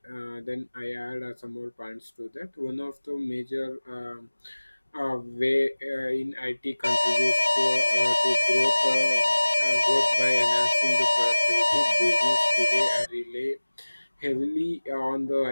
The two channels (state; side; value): inverted; both; correlation -1.00